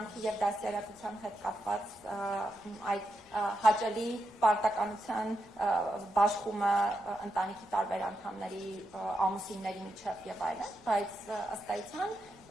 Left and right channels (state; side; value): noise; left; rumble, 29 dB below the sound